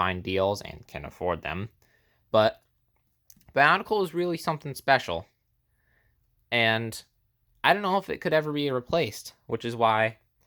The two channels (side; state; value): both; identical; correlation 1.00